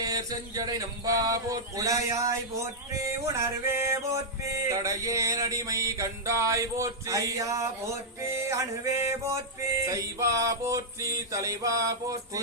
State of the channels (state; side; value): normal; both; correlation -0.07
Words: செஞ்சடை நம்பா போற்றி உடையாய் போற்றி உணர்வே போற்றி தடையே நடிமை கண்டாய் போற்றி ஐயா போற்றி அணுவே போற்றி சைவா போற்றி தலைவா போற்றி